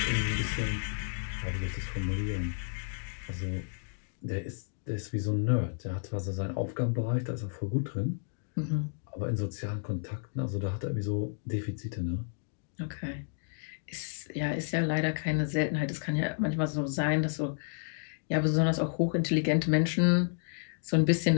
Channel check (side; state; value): right; silent; digital silence